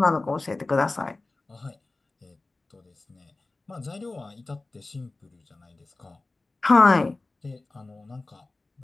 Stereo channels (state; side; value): quieter; right; 3.3 dB